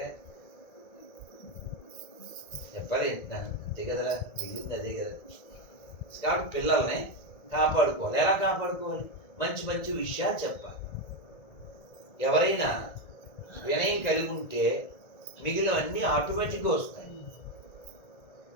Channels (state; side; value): late; right; 1.9 ms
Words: చెప్పాలి అంతే కదరా, మిగిలింది అదే కదా. కాబట్టి పిల్లల్ని కాపాడుకోవాలి. ఎలా కాపాడుకోవాలి? మంచి మంచి విషయాలు చెప్పాలి. ఎవరైనా వినయం కలిగి ఉంటే మిగిలినవన్నీ ఆటోమేటిక్గా వస్తాయి.